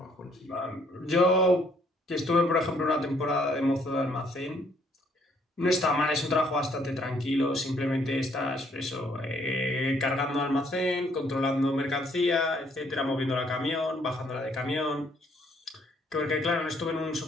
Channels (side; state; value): both; normal; correlation 0.66